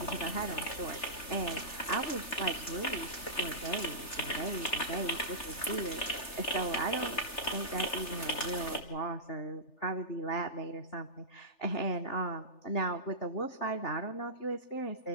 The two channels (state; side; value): late; right; 3.4 ms